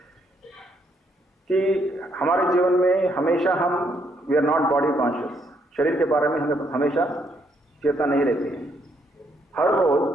कि हमारे जीवन में हमेशा हम we are not body conscious. शरीर के बारे में हमें हमेशा चेतना नहीं रहती है. हर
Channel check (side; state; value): both; normal; correlation 0.73